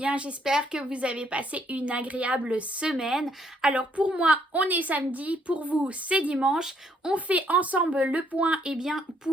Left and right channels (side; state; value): both; normal; correlation 0.69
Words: j'espère que vous avez passé une agréable semaine. Alors pour moi, on est samedi, pour vous c'est dimanche. On fait ensemble le point